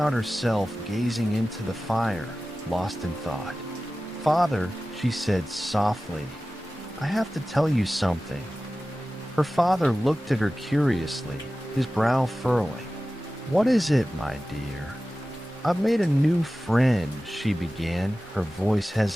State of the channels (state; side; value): normal; both; correlation 0.96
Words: herself gazing into the fire, lost in thought. "Father," she said softly, "I have to tell you something." Her father looked at her curiously, his brow furrowing. "What is it, my dear?" "I've made a new friend," she began, her voice